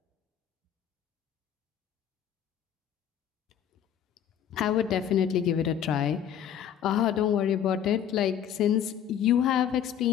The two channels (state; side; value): quieter; right; 9.4 dB